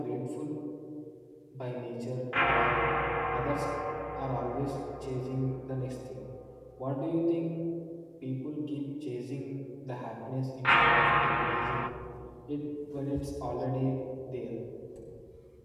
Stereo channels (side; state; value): both; identical; correlation 1.00